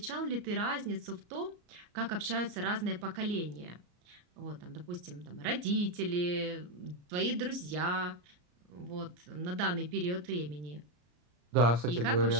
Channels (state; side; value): late; left; 34 ms